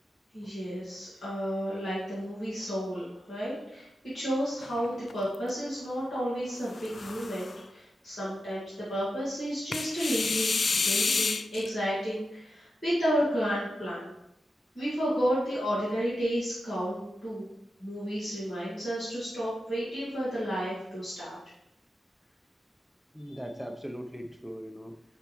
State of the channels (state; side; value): normal; both; correlation 0.90